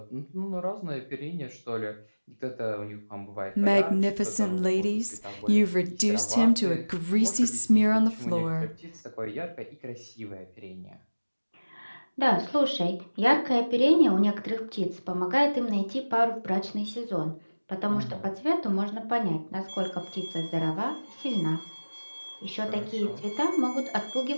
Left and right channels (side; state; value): both; inverted; correlation -1.00